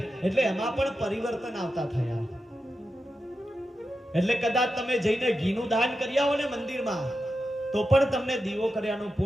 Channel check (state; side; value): normal; both; correlation 0.90